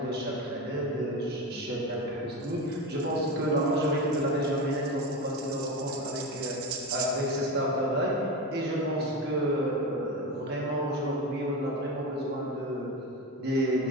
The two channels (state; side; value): normal; both; correlation 0.21